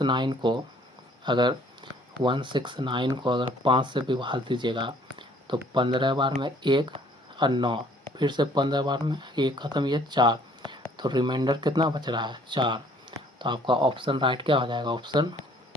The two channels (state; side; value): normal; both; correlation 0.58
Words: को अगर 5 से विभाग दीजिएगा तो 15 बार में 1 और 9, फिर से 15 बार में 1 ख़त्म, ये 4, तो रिमाइंडर कितना बच रहा है 4। तो आपका ऑप्शन राइट क्या हो जाएगा, ऑप्शन